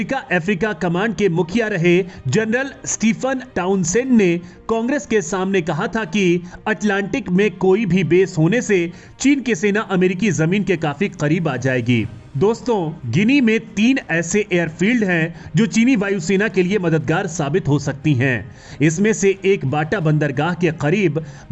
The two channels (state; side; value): identical; both; correlation 1.00